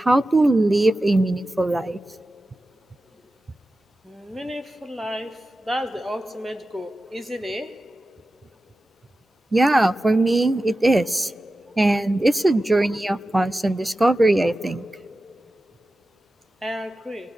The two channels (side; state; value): both; normal; correlation 0.94